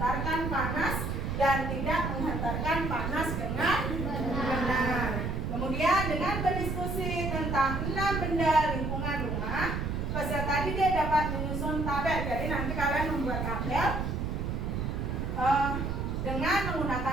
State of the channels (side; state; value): right; noise; rumble, 2 dB below the sound